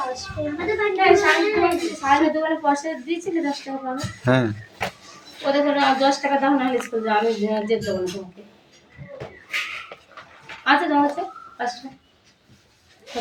সাড়ে দোকানে পয়সা দিয়েছিলে 10 টাকা পাবে হ্যাঁ, ওদের করে 10 টাকা দাও না স্কুল যাও, আমি যেতে দেবো না তোমাকে। আচ্ছা দাও আছে 5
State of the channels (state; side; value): identical; both; correlation 1.00